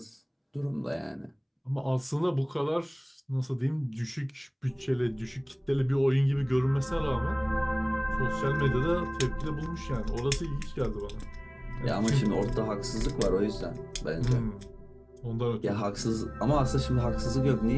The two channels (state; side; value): identical; both; correlation 1.00